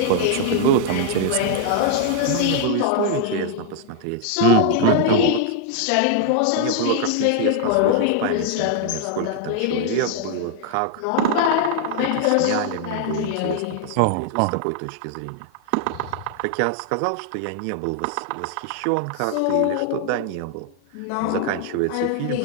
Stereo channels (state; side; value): different; both; correlation 0.00